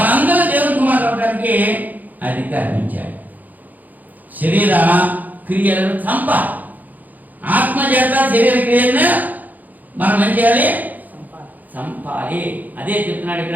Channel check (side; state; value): left; late; 0.082 ms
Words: దేవుని కుమారులు అవడానికి అధికారం ఇచ్చాడు. శరీర క్రియలను చంపాలి. ఆత్మ చేత శరీర క్రియలను మనం ఏం చేయాలి? చంపాలి. అదే చెప్తున్నాడు